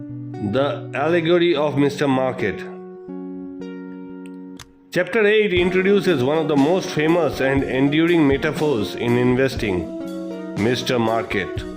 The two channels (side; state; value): both; identical; correlation 1.00